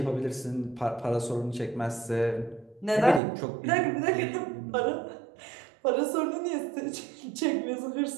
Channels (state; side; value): drops out; left; at 3.2 s